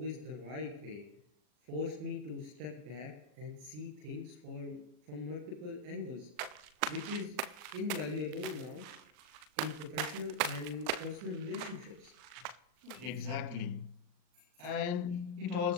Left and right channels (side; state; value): left; late; 40 ms